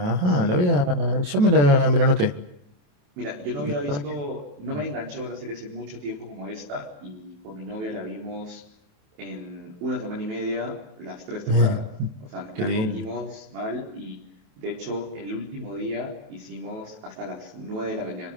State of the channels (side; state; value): left; late; 28 ms